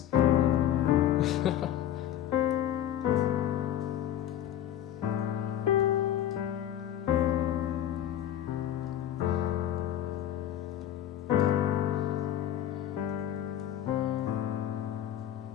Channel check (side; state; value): right; quieter; 11.1 dB